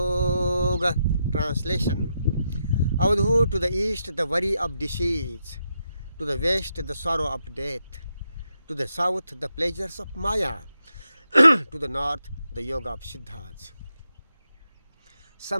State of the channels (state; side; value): inverted; both; correlation -0.83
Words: Translation. Avadhu to the east the worry of disease, to the west the sorrow of death, to the south the pleasures of maya, to the north the yoga of Siddhartha.